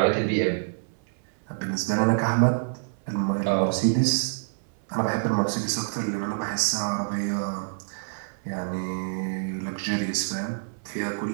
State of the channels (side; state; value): left; silent; 60 dB below the other